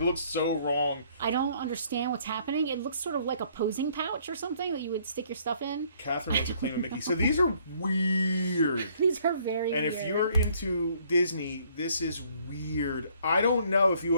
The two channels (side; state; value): both; inverted; correlation -0.63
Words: looks so wrong. I don't understand what's happening. It looks sort of like a posing pouch or something that you would stick your stuff in. Catherine wants to claim a Mickey. So these are weird. These are very weird. And if you're into Disney, this is weird. I don't know if you